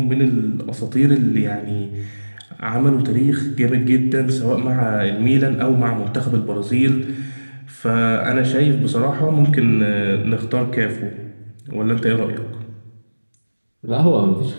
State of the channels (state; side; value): inverted; both; correlation -1.00